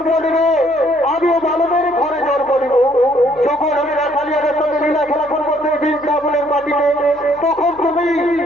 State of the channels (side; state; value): left; noise; hum, 28 dB below the sound